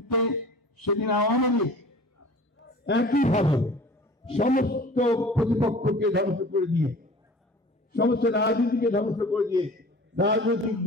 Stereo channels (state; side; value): normal; both; correlation 0.43